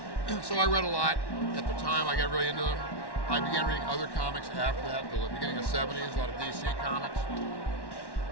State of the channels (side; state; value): right; late; 1.1 ms